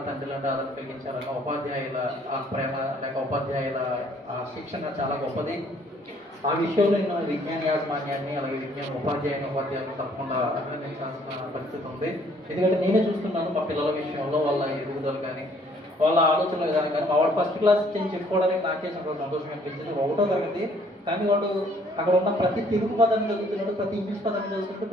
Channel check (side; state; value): both; normal; correlation 0.62